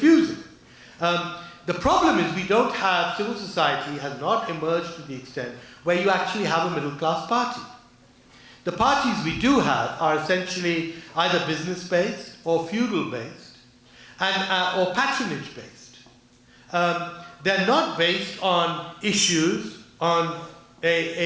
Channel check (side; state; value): both; identical; correlation 1.00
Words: The problem is we don't have, civil society has not emerged to the extent where you actually have a middle-class party. The parties we do have are essentially either business-based or feudal-based and or patronage-based. They're not based on issues, on